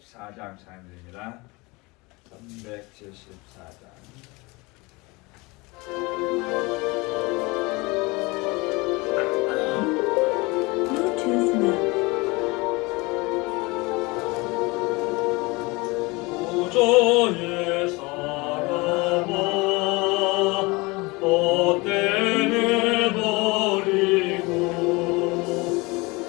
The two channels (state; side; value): quieter; right; 24.9 dB